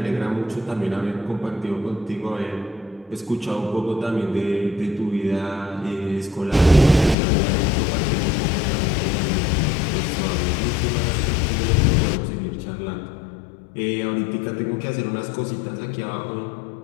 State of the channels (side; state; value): right; drops out; at 7.2 s